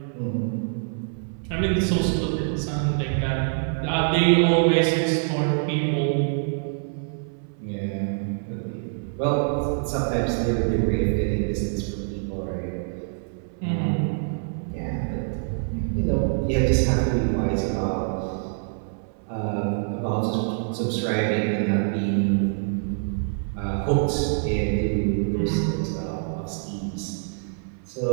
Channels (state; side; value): silent; left; 62 dB below the other